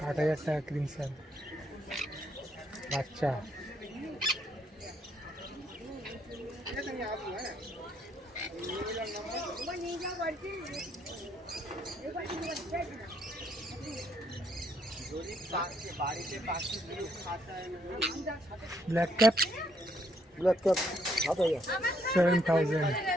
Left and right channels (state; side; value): normal; both; correlation 0.71